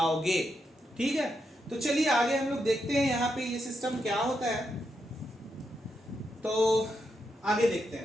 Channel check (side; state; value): both; normal; correlation 0.83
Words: ठीक है, तो चलिए आगे हम लोग देखते हैं यहाँ पे ये सिस्टम क्या होता है। तो आगे देखते